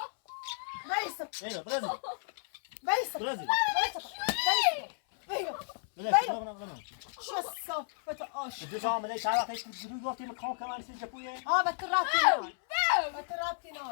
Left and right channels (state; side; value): silent; right; 56 dB below the other